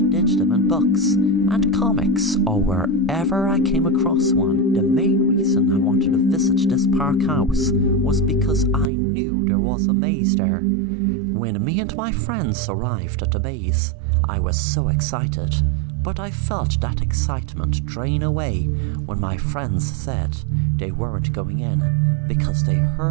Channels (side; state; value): left; drops out; at 8.9 s